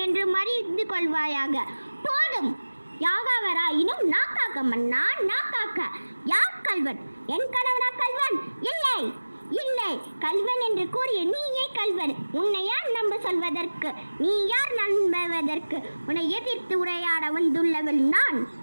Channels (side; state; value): both; inverted; correlation -1.00